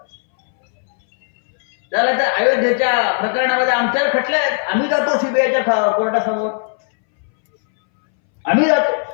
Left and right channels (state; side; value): silent; right; 65 dB below the other